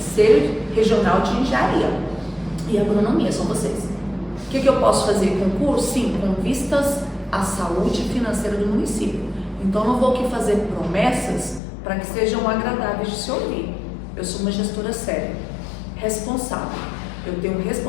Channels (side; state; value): right; drops out; at 11.6 s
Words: Regional de Engenharia e Agronomia, são vocês. O que eu posso fazer? Concurso? Sim, com vistas à saúde financeira do município. Então, não vou aqui fazer promessas para que sejam agradáveis de se ouvir. Eu sou uma gestora séria, responsável. Eu tenho